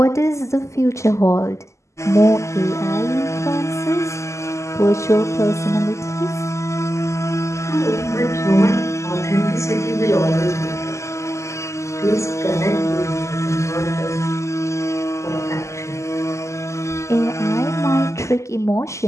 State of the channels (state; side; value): late; right; 0.14 ms